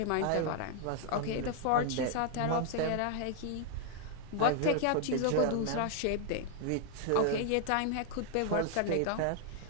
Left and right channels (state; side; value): different; both; correlation 0.00